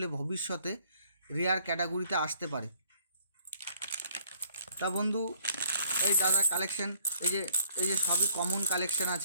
ভবিষ্যতে রেয়ার ক্যাটাগরিতে আসতে পারে। তা বন্ধু, এই দাদা কালেকশন, এই যে সবই কমন কালেকশন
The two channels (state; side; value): inverted; both; correlation -0.62